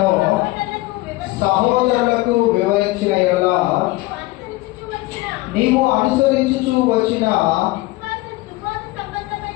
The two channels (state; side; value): quieter; right; 19.7 dB